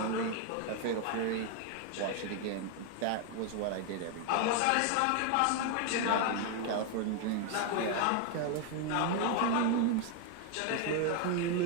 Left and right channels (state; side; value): different; both; correlation 0.01